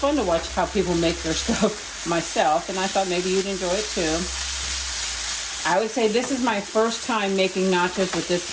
to watch how people make their stuff myself. And I thought maybe you'd enjoy it too. I would say this is my first time making nachos with this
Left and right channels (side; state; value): both; identical; correlation 1.00